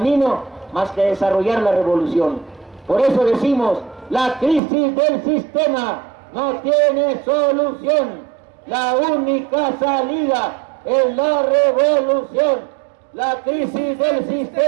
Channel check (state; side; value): drops out; left; at 4.6 s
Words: más que desarrollar la revolución. Por eso decimos, la crisis del sistema no tiene solución, la única salida es la revolución. La crisis del